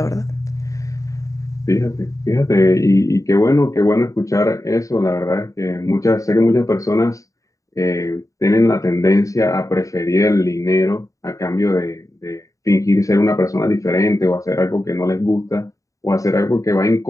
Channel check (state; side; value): late; right; 0.16 ms